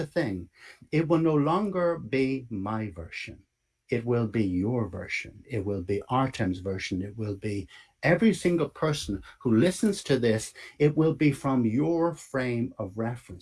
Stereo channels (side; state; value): both; identical; correlation 1.00